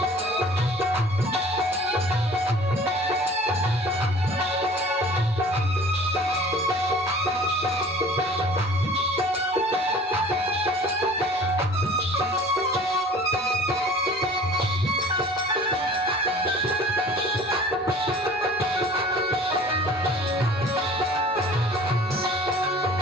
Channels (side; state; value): both; normal; correlation 0.47